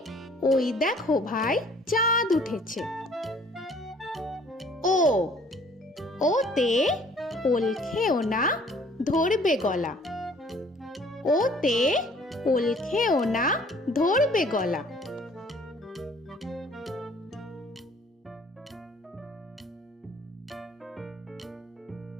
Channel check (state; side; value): normal; both; correlation 0.56